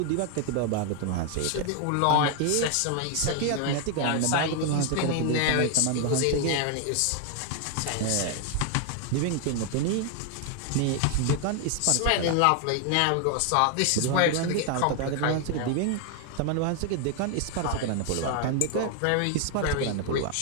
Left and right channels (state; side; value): different; both; correlation 0.00